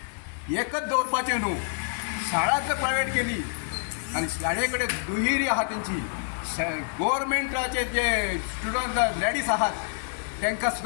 एकच दवरपाचें न्हू. शाळा जर प्रायवेट केली आणि शाळे कडेन दुहेरी आहा तेंची गव्हर्मेंटाचे जे स्टुडंट लेडीज आहात तांकां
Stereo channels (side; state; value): right; silent; digital silence